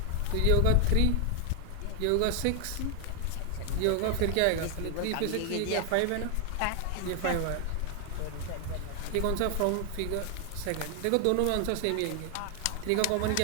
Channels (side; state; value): both; different; correlation 0.00